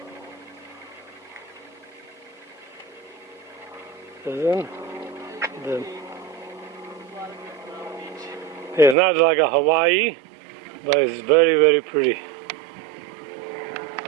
It's not like a Hawaii, but it's very, very pretty.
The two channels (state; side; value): drops out; left; at 9.0 s